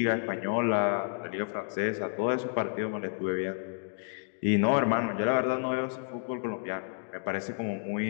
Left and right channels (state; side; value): silent; right; digital silence